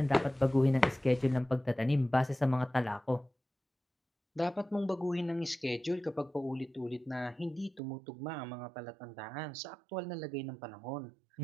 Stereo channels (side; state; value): left; drops out; at 7.8 s